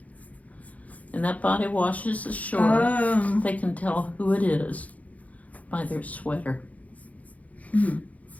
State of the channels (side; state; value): right; late; 0.071 ms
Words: and that body washes ashore, they can tell who it is by their sweater. Hmm.